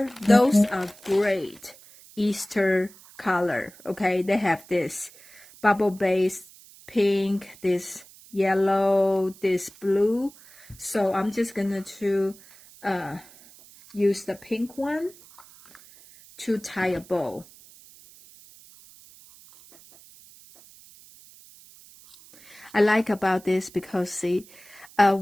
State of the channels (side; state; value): right; noise; hiss, 23 dB below the sound